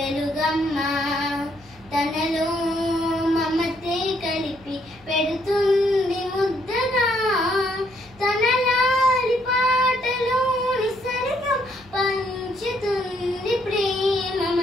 తనలో మమతే కలిపి పెడుతుంది ముద్దగా, తన లాలి పాటలోని సరిగం పంచుతుంది ప్రేమ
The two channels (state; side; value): noise; left; hum, 26 dB below the sound